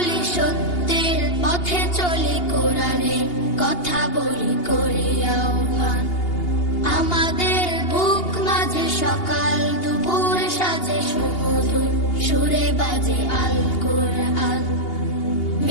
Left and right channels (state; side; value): late; right; 2.8 ms